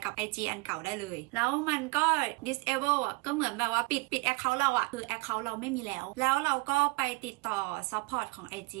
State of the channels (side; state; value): left; quieter; 24.9 dB